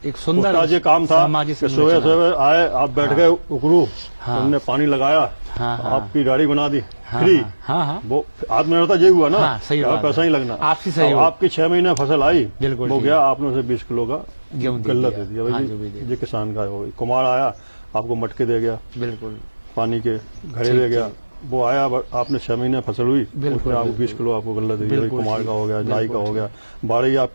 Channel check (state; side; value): inverted; both; correlation -1.00